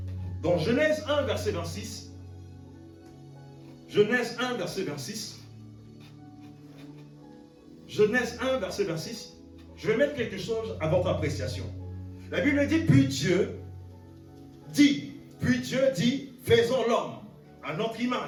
dans Genèse 1, verset 26. Genèse 1, verset 26. Genèse 1, verset 26. Je vais mettre quelque chose à votre appréciation. La Bible dit, puis Dieu dit, faisons l'homme à notre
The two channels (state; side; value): identical; both; correlation 1.00